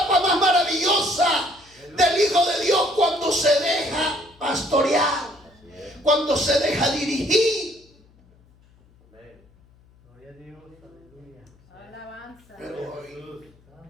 más maravillosa del Hijo de Dios cuando se deja pastorear, cuando se deja dirigir. Gloria a Dios, aleluya. Alabanza. Pero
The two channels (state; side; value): noise; left; hum, 30 dB below the sound